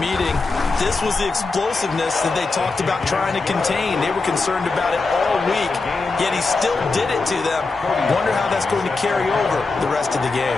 this was the explosiveness that they talked about trying to contain. They were concerned about it all week, yet he still did it to them. Wonder how that's going to carry over the rest of the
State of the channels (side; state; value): right; quieter; 3.9 dB